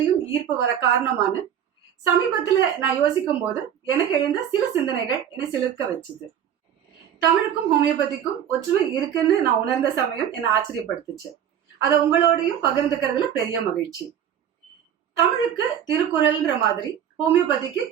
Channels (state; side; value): quieter; left; 9.4 dB